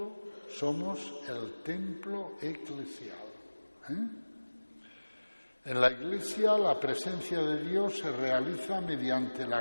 somos el templo eclesial. En la Iglesia la presencia de Dios se realiza mediante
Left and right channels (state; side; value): inverted; both; correlation -1.00